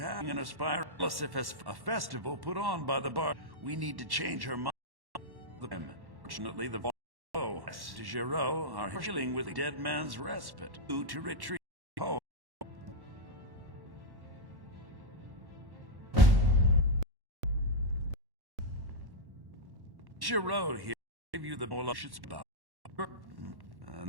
an aspire a festival put on by the bar. We need to change her mind. Fortunately, the de Giraud are healing with the dead man's respite. Due to retreat home. Giraud here gave you the bullshit about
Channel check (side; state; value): left; late; 1.1 ms